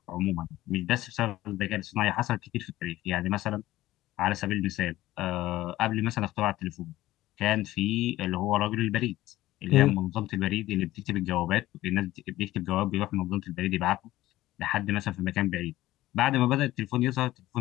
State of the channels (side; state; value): right; quieter; 16.0 dB